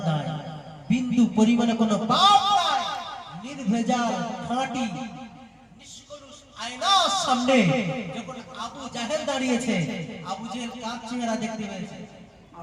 নাই, বিন্দু পরিমাণ কোনো পাপ নাই, নির্ভেজাল খাঁটি নিষ্কলুষ আয়নার সামনে যখন আবু জেহেল দাঁড়িয়েছে, আবু জেহেল কার চেহারা দেখতে পেয়েছে?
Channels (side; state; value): both; identical; correlation 1.00